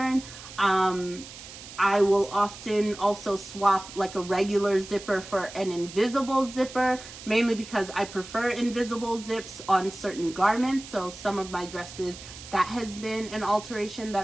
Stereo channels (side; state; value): right; noise; hiss, 15 dB below the sound